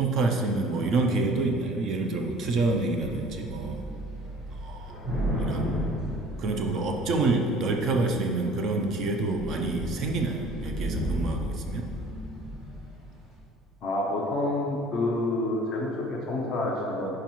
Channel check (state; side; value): normal; both; correlation 0.49